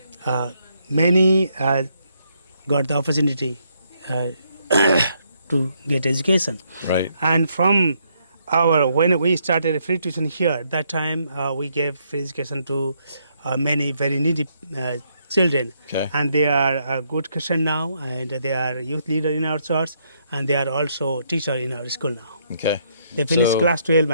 many got the opportunity to get education. Right. And from when we started free tuition here, that time we gave free education to many very needy children. Okay. And they are a good Christian now, and they are youth leader in our church, and they are also teacher in our school now. Okay. They finished So- class 12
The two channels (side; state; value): both; inverted; correlation -0.74